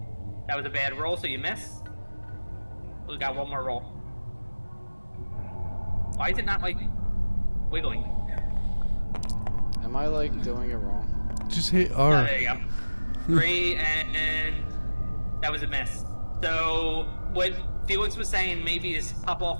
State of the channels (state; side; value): inverted; both; correlation -1.00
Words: That was a bad roll, so you miss. We got 1 more roll. Why is it not, like, wiggling? Am I, like, doing it wrong? Just hit Oh, R. there you go. 3, and that was a miss. So, what Felix was saying maybe is pop